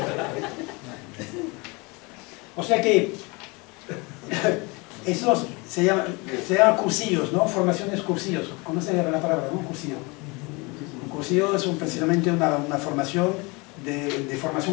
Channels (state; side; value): quieter; right; 27.2 dB